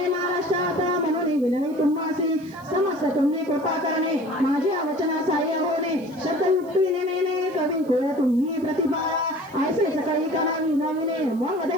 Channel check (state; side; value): noise; right; hiss, 27 dB below the sound